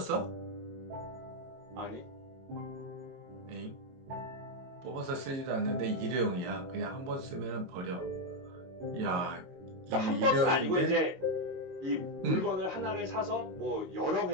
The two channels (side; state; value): left; late; 22 ms